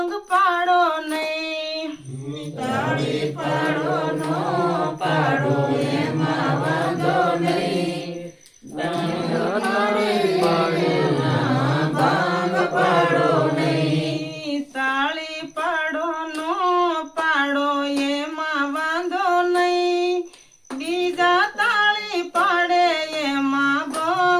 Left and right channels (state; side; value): identical; both; correlation 1.00